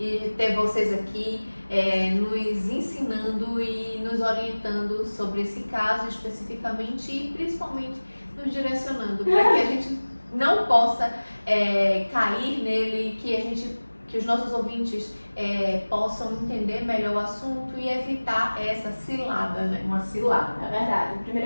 ter vocês aqui nos ensinando e nos orientando sobre esse caso especificamente e principalmente nos direcionando para que a gente não possa cair nele, que os nossos ouvintes possam entender melhor o assunto e evitar essa cilada, né? Uma cilada. É verdade.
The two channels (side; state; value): both; inverted; correlation -1.00